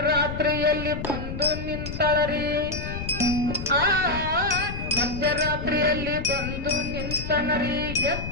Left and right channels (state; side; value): noise; left; rumble, 7 dB below the sound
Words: ಬಂದು ನಿಂತಳರಿ ಆ ಮಧ್ಯರಾತ್ರಿಯಲ್ಲಿ ಬಂದು ನಿಂತನರಿ